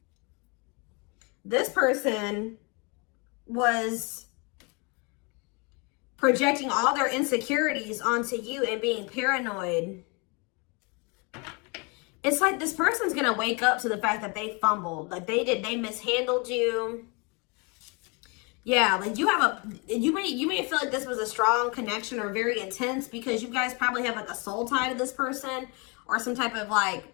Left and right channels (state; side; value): quieter; right; 31.0 dB